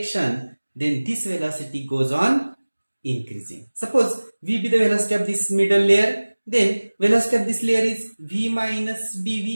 then this velocity goes on increasing. Suppose V be the velocity of this middle layer, then velocity of this layer is V minus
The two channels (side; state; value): both; inverted; correlation -1.00